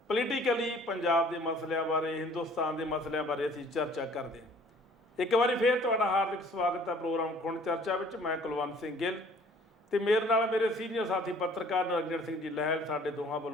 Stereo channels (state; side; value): normal; both; correlation 0.55